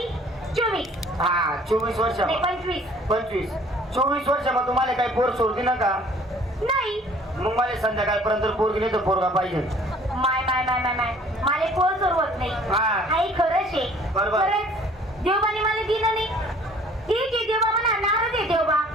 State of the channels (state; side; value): normal; both; correlation 0.54